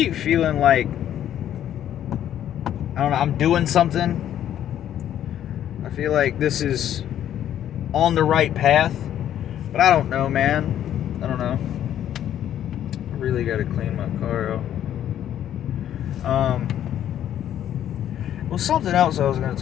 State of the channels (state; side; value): quieter; right; 10.9 dB